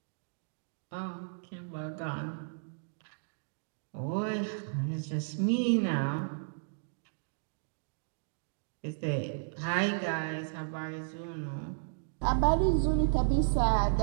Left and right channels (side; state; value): left; silent; digital silence